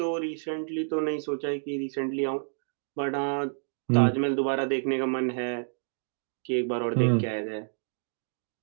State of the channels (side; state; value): left; silent; digital silence